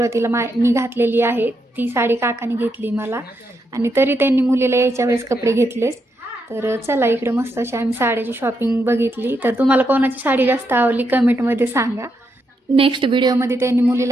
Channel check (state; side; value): normal; both; correlation 0.81